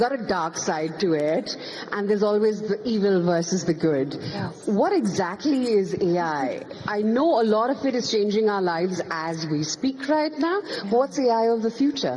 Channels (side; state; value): both; identical; correlation 1.00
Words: a dark side to it, and there's always the evil versus the good. Yes. What exactly is AI? I know a lot of it is changing our lives as we speak right now. What's AI of the